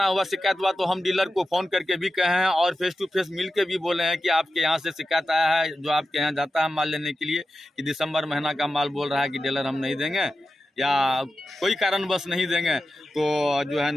हुआ, शिकायत हुआ, तो हम डीलर को फोन करके भी कहे हैं और फेस टू फेस मिल के भी बोले हैं कि आपके यहाँ से शिकायत आया है, जो आपके यहाँ जाता है माल लेने के लिए, कि दिसंबर महीना का माल बोल रहा है कि डीलर हम नहीं देंगे या कोई कारणवश नहीं देंगे, तो जो है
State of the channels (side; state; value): both; normal; correlation 0.92